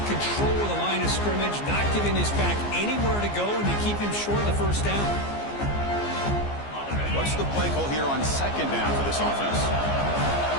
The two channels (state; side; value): late; right; 15 ms